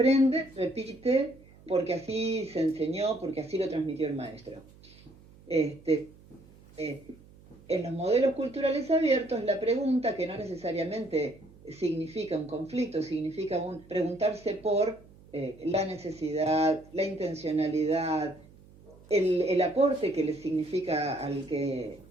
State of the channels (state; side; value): noise; right; hum, 24 dB below the sound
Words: repite, porque así se enseñó, porque así lo transmitió el maestro. En los modelos culturales abiertos, la pregunta, que no necesariamente significa un conflicto, significa preguntarse por la necesidad, la intencionalidad, el aporte que le significa al que